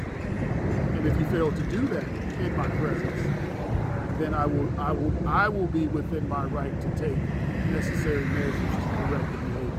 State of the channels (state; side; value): identical; both; correlation 1.00